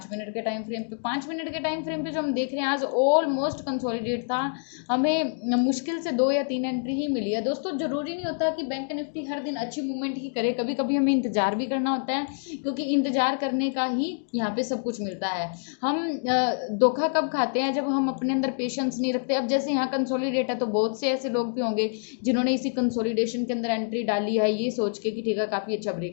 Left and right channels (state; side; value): silent; right; digital silence